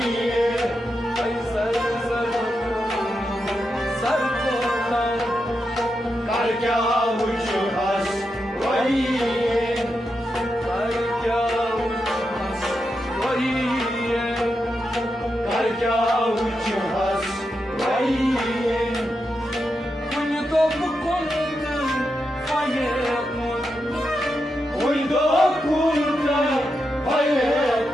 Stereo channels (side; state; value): both; normal; correlation 0.86